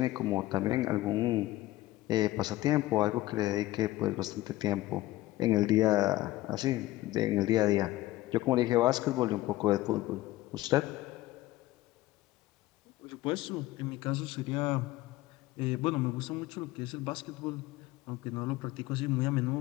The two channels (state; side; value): quieter; right; 16.9 dB